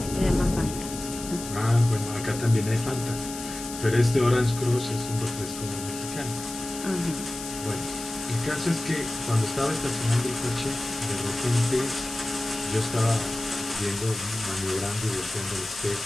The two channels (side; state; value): left; noise; hiss, 10 dB below the sound